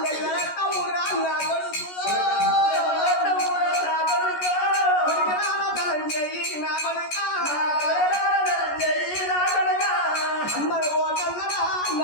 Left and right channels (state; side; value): late; right; 14 ms